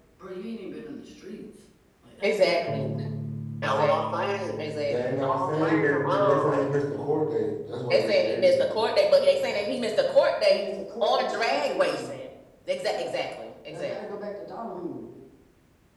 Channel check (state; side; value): identical; both; correlation 1.00